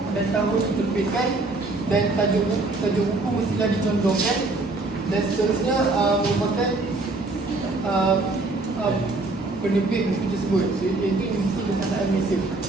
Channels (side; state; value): left; quieter; 3.2 dB